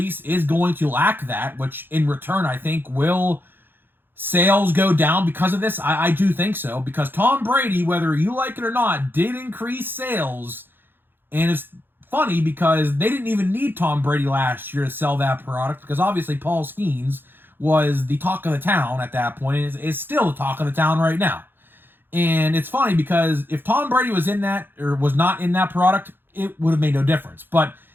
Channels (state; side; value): late; left; 0.099 ms